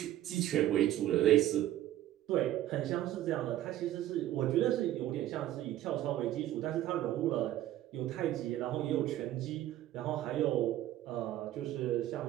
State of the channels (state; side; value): quieter; left; 13.4 dB